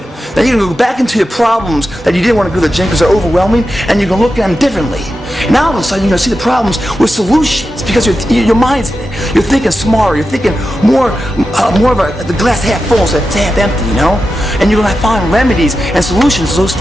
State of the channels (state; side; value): normal; both; correlation 0.91